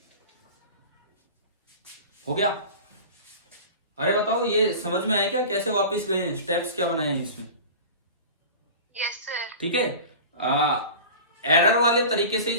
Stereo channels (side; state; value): both; inverted; correlation -0.36